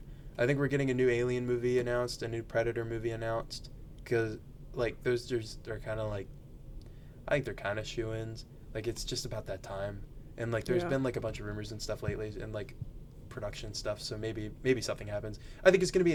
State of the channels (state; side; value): identical; both; correlation 1.00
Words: I think we're getting a new Alien movie announced, a new Predator movie announced, because like those are kind of like, I think they're kind of shoo-ins. Like, it's just about that time, and like there's been like a bunch of rumors and stuff lately, and like production stuff, so maybe something happens. I think it's gonna be